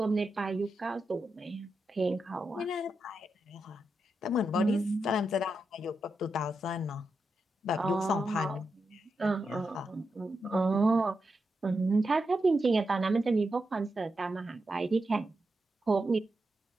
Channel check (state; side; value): normal; both; correlation 0.86